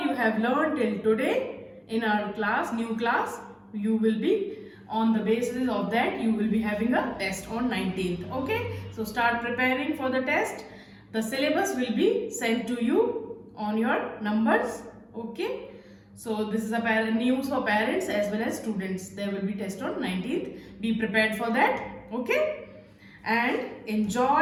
you have learned till today in our class, new class, you will be on the basis of that you will be having a test on 19th. Okay, so start preparing for the test. The syllabus will be sent to you on your numbers. Okay, so this is a news for parents as well as students. There will be test on 19th. Be prepared for that. Okay, and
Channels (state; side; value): identical; both; correlation 1.00